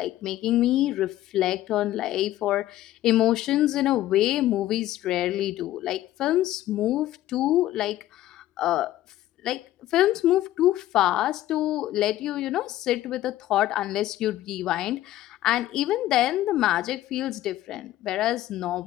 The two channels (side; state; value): right; quieter; 14.3 dB